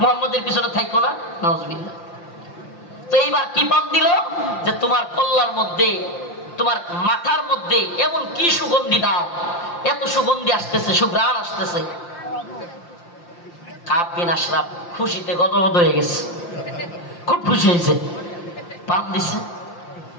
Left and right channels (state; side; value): late; right; 5.8 ms